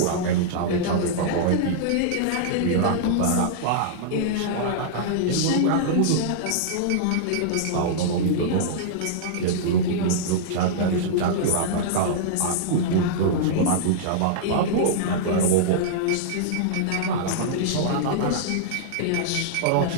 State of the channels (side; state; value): both; different; correlation -0.02